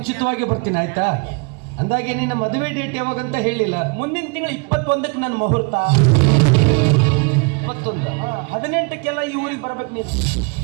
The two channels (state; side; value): quieter; left; 32.5 dB